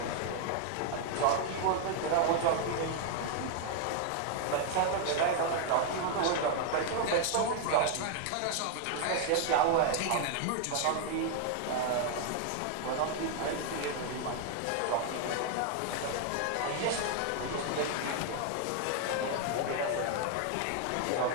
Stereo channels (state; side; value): different; both; correlation 0.00